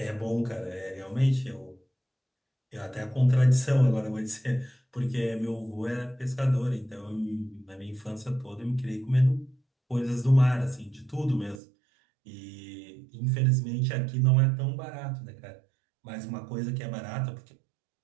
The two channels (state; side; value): drops out; left; at 11.6 s